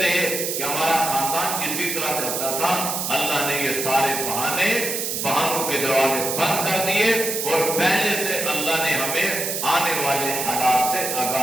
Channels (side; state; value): right; noise; hiss, 2 dB below the sound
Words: رہے کہ ہمارا خاندان اسی طرح کرتا تھا۔ اللہ نے یہ سارے بہانوں کے دروازے بند کر دیے اور پہلے سے اللہ نے ہمیں آنے والے حالات سے